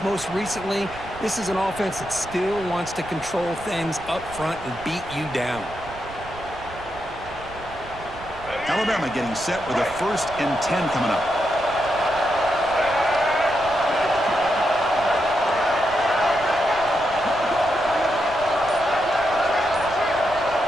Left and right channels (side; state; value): right; noise; rumble, 17 dB below the sound